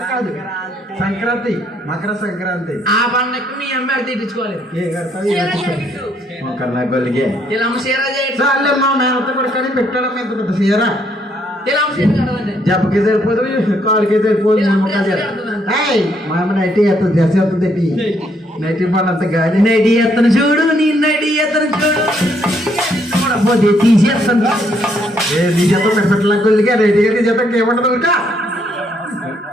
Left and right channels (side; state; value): both; normal; correlation 0.71